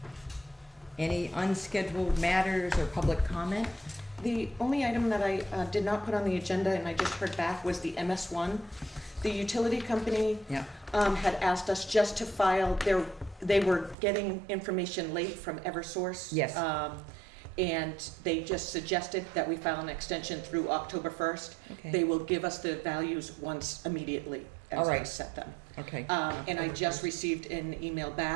Any unscheduled matters or public comment? The only item that I did not put on the agenda, and I just heard back, was the MS1. The utility company had asked us just to file they were getting information late from Eversource. Yes. And they just suggested that we file an extension through October 1st. Okay. They will give us the values once immediately as I set them. Okay. And I just received an email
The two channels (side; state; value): left; drops out; at 14.0 s